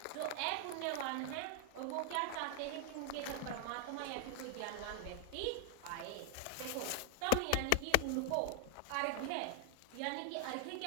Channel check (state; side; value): different; both; correlation 0.00